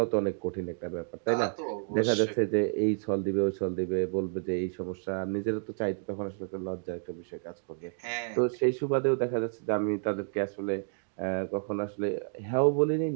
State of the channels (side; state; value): left; silent; digital silence